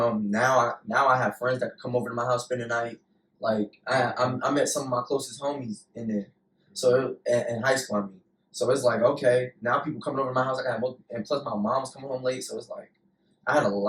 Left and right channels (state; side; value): identical; both; correlation 1.00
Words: now I have friends that could come over to my house spend the night. Like I met some of my closest homies in there, so in high school I mean. So it's like okay, now people coming over to my house. And plus my mom's coming home late, so it's like I had a